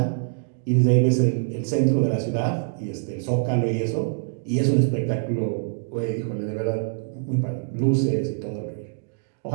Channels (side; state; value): left; silent; digital silence